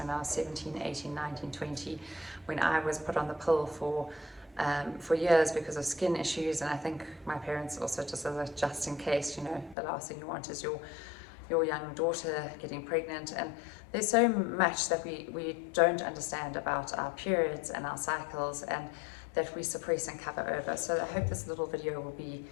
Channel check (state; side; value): drops out; right; at 9.8 s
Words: I was 17, 18, 19, 20, when I was put on the pill for years because of skin issues. And I think my parents also, just in case, you know, the last thing you want is your young daughter getting pregnant. And there's so much that we don't understand about our periods and our cycles, and that we suppress and cover over. So I hope this little video will be